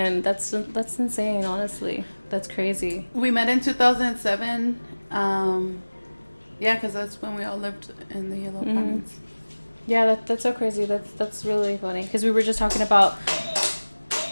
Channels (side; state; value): both; inverted; correlation -1.00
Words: That's insane, honestly. That's crazy. We met in 2007. Yeah, because that's when we all lived in the yellow apartments. Yeah, that's so crazy. That's really funny because we were just talking about.